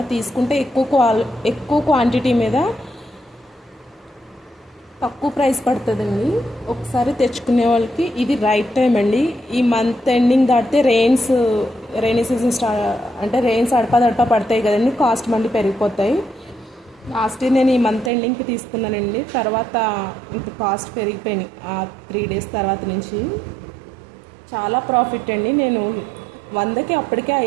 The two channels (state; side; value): drops out; left; at 18.1 s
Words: తీసుకుంటే ఎక్కువ క్వాంటిటీ మీద తక్కువ ప్రైస్ పడుతుందండి. ఒకసారి తెచ్చుకునే వాళ్ళకి ఇది రైట్ టైం అండి. ఈ మంత్ ఎండింగ్ దాటితే రెయినీ సీజన్ అంటే రెయిన్స్ అడపా పడతాయి కదండి, కాస్ట్ మళ్ళీ పెరిగిపోతాయి. లాస్ట్ ఇయర్ నేను ఈ మంత్ ఎండింగ్కి తీసుకున్నానండి. తర్వాత ఇంత కాస్ట్ పెరిగిపోయినాయి ఆ 3 days తర్వాత నుంచి. చాలా ప్రాఫిట్ అండి. నేను 100కి అప్పటికే